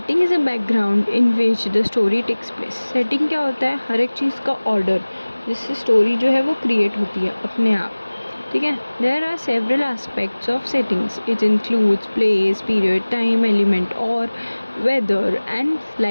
is a background in which the story takes place. Setting क्या होता है, हर एक चीज़ का ऑर्डर जिससे स्टोरी जो है वो क्रिएट होती है अपने आप, ठीक है। There are several aspects of settings, it includes place, period, time, element और weather and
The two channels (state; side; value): inverted; both; correlation -1.00